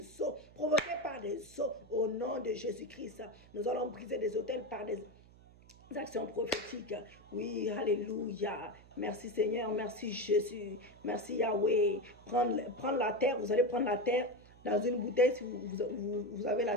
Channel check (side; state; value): right; noise; hum, 23 dB below the sound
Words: eaux, provoqué par des eaux, au nom de Jésus-Christ. Nous allons briser des autels par des actions prophétiques. Oui, alléluia. Merci Seigneur, merci Jésus, merci Yahweh. Prendre la terre, vous allez prendre la terre dans une bouteille. Si vous avez la